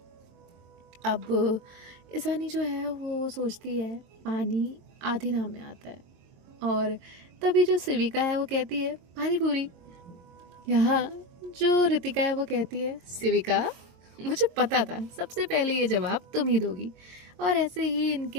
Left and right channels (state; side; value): late; left; 22 ms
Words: अब ईशानी जो है वो सोचती है, पानी आधे नाम में आता है। और तभी जो सिविका है वो कहती है, पानी पूरी। यहाँ जो ऋतिका है वो कहती है, सिविका मुझे पता था सबसे पहले ये जवाब तुम ही दोगी। और ऐसे ही